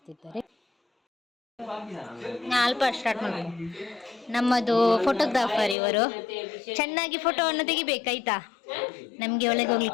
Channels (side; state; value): right; drops out; at 5.8 s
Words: ಅಲ್ಪ ಸ್ಟಾರ್ಟ್ ಮಾಡಿ. ನಮ್ಮದು ಫೋಟೋಗ್ರಾಫರ್ ಇವರು, ಚೆನ್ನಾಗಿ ಫೋಟೋವನ್ನು ತೆಗಿಬೇಕಾಯ್ತಾ, ನಮಗೆ ಒಳಗೆ